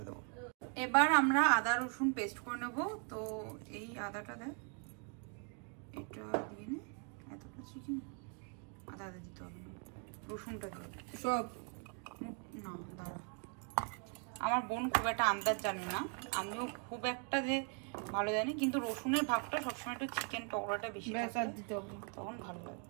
দেবো। এবার আমরা আদা রসুন পেস্ট করে নেবো। তো এই আদাটা দেখ, এটা দিয়ে নে, এতটা চিকেন আদা দিতে হবে না, রসুনটা দিয়ে সব না। দাঁড়া, আমার বোন খুব একটা আন্দাজ জানে না, আমিও খুব একটা যে ভালো জানি, কিন্তু রসুনের ভাগটা সবসময় একটু চিকেন পকোড়াটা বেশি দিতে হবে, তখন ভালো লাগে।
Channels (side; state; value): left; quieter; 39.9 dB